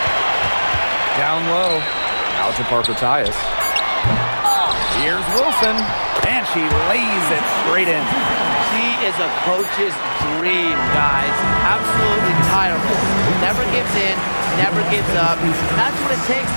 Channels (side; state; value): both; inverted; correlation -1.00